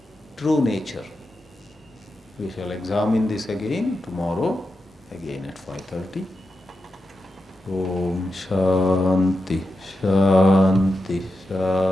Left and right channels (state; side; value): normal; both; correlation 0.89